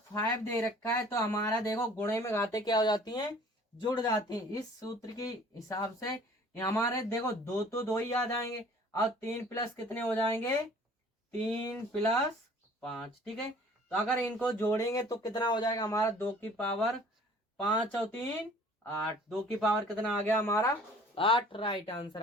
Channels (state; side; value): normal; both; correlation 0.51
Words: 5 दे रखा है तो हमारा देखो गुणे में घाते क्या हो जाती हैं? जुड़ जाती हैं। इस सूत्र के हिसाब से हमारे देखो दो तो दो ही आ जाएंगे, और 3 प्लस कितने हो जाएंगे? 3 प्लस 5। ठीक है। तो अगर इनको जोड़ेंगे तो कितना हो जाएगा हमारा? 2 की पावर 5 और 3 8। 2 की पावर कितना आ गया हमारा? 8। राइट आंसर